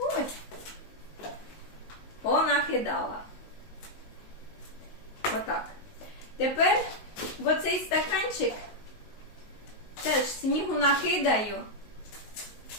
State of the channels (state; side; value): late; right; 19 ms